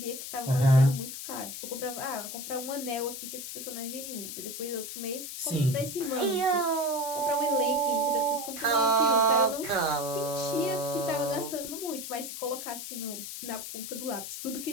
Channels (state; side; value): noise; left; hiss, 8 dB below the sound